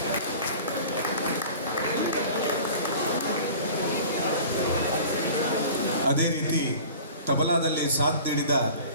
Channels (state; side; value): inverted; both; correlation -0.42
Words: ಅದೇ ರೀತಿ ತಬಲಾದಲ್ಲಿ ಸಾಥ್ ನೀಡಿದ